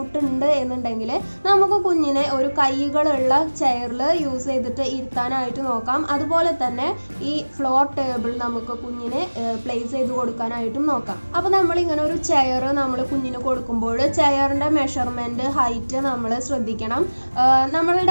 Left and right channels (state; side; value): inverted; both; correlation -1.00